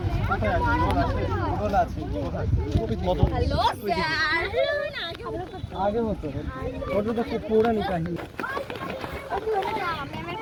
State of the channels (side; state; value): both; identical; correlation 1.00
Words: আগে হতো, ওটা তো খুব পৌরাণিক কাহিনী।